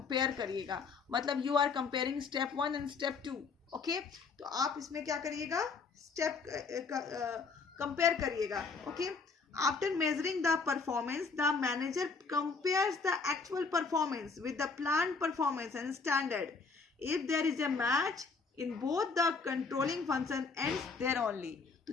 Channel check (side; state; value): right; quieter; 4.7 dB